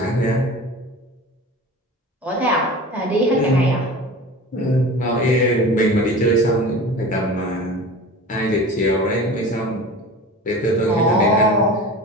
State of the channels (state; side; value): normal; both; correlation 0.36